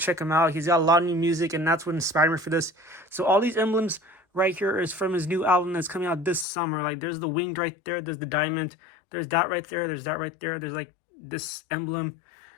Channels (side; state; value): right; drops out; at 6.5 s